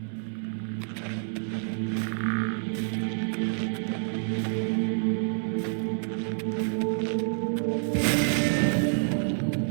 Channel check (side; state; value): left; silent; 59 dB below the other